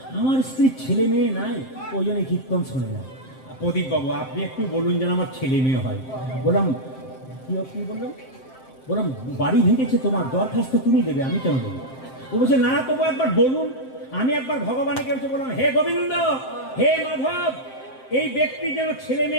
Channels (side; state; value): right; late; 7.6 ms